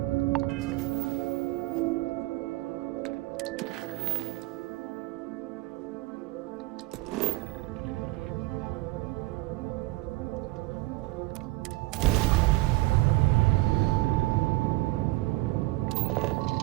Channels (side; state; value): left; quieter; 19.8 dB